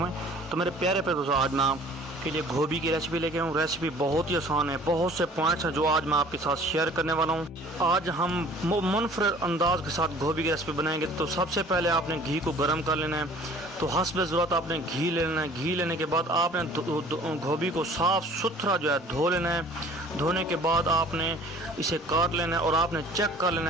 तो मेरे प्यारे प्यारे दोस्तों, आज मैं आपके लिए गोभी की रेसिपी लेके आऊँ। रेसिपी बहुत ही आसान है, बहुत से पॉइंट्स हैं जो आज मैं आपके साथ शेयर करने वाला हूँ। आज हम मुनफरद अंदाज के साथ गोभी की रेसिपी बनाएंगे। तो सबसे पहले आपने घी को गर्म कर लेना है। तो हस्ब ज़रूरत आपने घी ले लेना है। घी लेने के बाद आपने गोभी को साफ़ सुथरा जो है धो लेना है। धोने के बाद आपने इसे काट लेना है और आपने चेक कर लेना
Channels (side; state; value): both; normal; correlation 0.50